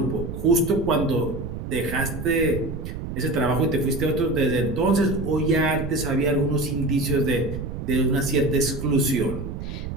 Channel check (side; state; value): right; noise; rumble, 7 dB below the sound